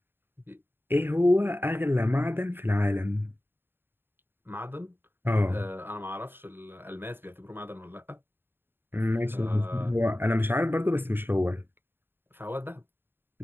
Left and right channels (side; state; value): left; late; 0.10 ms